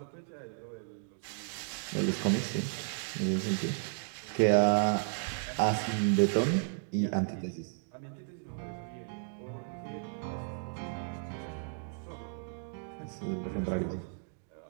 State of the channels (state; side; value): silent; left; digital silence